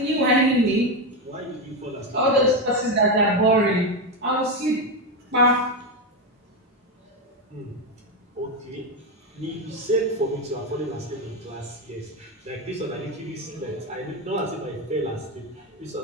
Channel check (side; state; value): both; normal; correlation 0.11